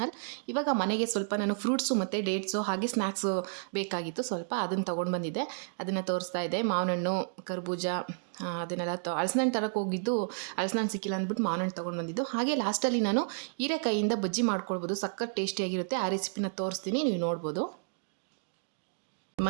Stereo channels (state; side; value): silent; left; digital silence